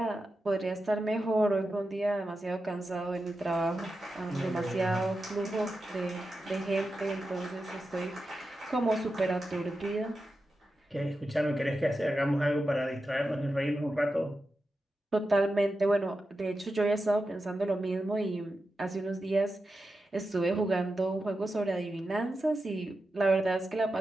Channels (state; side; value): normal; both; correlation 0.90